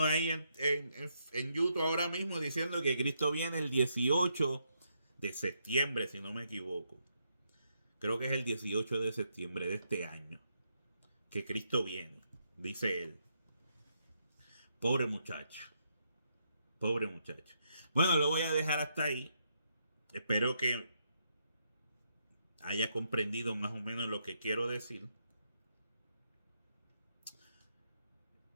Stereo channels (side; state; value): both; inverted; correlation -0.78